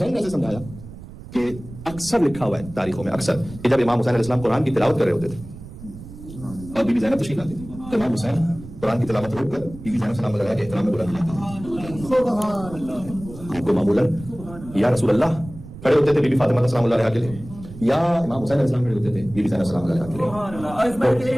ने ऐसे समझाया कि अक्सर लिखा हुआ है तारीखों में अक्सर कि जब इमाम हुसैन अलैहिस्सलाम कुरान की तिलावत कर रहे होते थे और बीबी ज़ैनब तशरीफ लाती थी तो इमाम हुसैन कुरान की तिलावत रोककर बीबी ज़ैनब सलाम अलैहा के एहतराम में बुलंद लाते थे। आपको मामूलन या रसूल अल्लाह खड़े होते थे बीबी फातिमा सलाम अलैहा के लिए या इमाम हुसैन अलैहिस्सलाम खड़े होते थे बीबी ज़ैनब सलाम अलैहा के लिए।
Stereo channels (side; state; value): right; noise; rumble, 15 dB below the sound